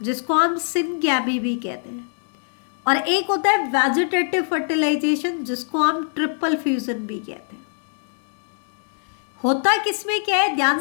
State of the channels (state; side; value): silent; right; digital silence